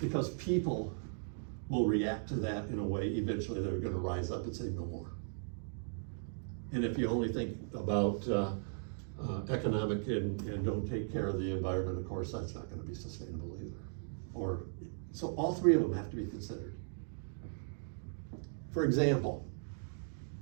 people will react to that in a way, eventually they're gonna rise up and say no more. And if you only think about economic and don't take care of the environment, of course, that's not gonna be sustainable either. So all three of them have to be considered. For example,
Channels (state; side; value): silent; left; digital silence